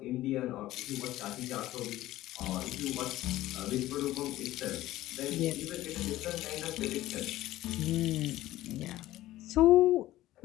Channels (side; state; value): right; quieter; 15.5 dB